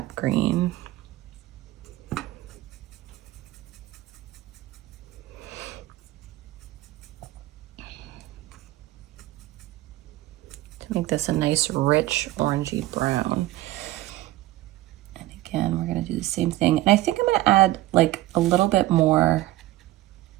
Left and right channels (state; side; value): quieter; left; 16.5 dB